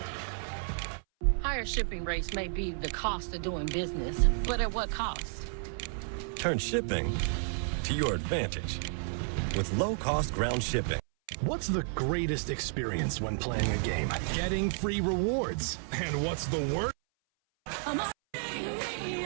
Higher shipping rates may be the cost of doing business, but at what cost? Turn shipping to your advantage with low-cost ground shipping. What's the greatest experience when playing a game? Getting free rewards. And what's the worst?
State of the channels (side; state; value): left; silent; 57 dB below the other